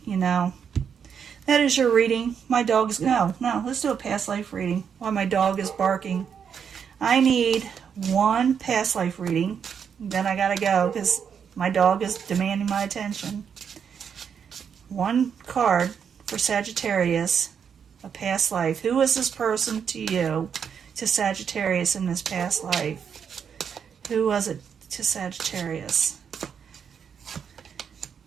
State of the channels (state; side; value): quieter; left; 7.3 dB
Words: you know. That is your reading. My dog's, no, let's do a past life reading while my dog is barking. I need one past life reading, then I gotta go because my dog is demanding my attention. One card for Sagittarius, a past life. Who is this person to you, to Sagittarius in this past life? Who was it to Sagittarius?